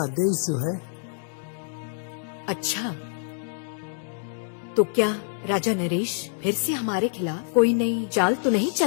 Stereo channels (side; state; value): right; silent; digital silence